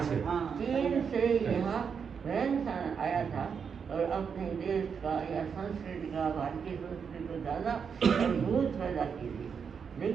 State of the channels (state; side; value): quieter; left; 6.5 dB